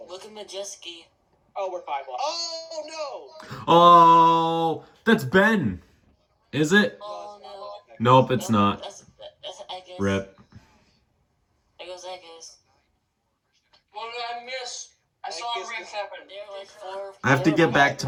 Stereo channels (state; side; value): identical; both; correlation 1.00